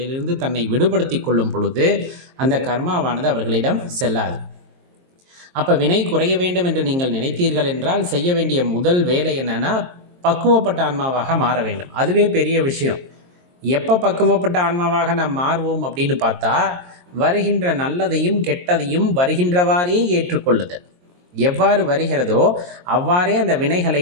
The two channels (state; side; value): late; left; 22 ms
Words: தன்னை விடுபடுத்தி கொள்ளும் பொழுது அந்த கர்மாவானது அவர்களிடம் செல்லாது. அப்போ வினை குறைய வேண்டும் என்று நீங்கள் நினைத்தீர்கள் என்றால் செய்ய வேண்டிய முதல் வேலை என்னன்னா, பக்குவப்பட்ட ஆன்மாவாக மாற வேண்டும். அதுவே பெரிய விஷயம். எப்போ பக்குவப்பட்ட ஆன்மாவாக நாம் மாறுவோம் அப்படின்னு பார்த்தா, வருகின்ற நல்லதையும் கெட்டதையும் வருகின்றவாறே ஏற்றுக்கொள்ளுதல். எவ்வாறு வருகிறதோ அவ்வாறே அந்த வினைகளை